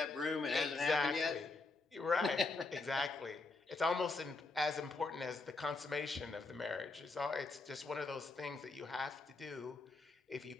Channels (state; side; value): quieter; right; 3.6 dB